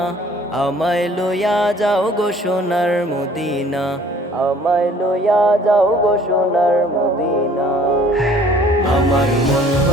আমায় লইয়া যাও গো সোনার মদিনা, আমায় লইয়া যাও গো সোনার মদিনা। আমার মন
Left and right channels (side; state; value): both; normal; correlation 0.55